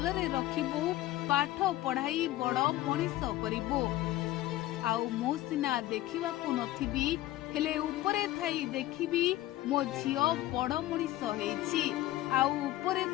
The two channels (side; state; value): right; quieter; 15.6 dB